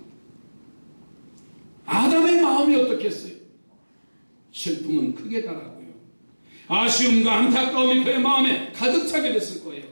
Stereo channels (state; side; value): inverted; both; correlation -1.00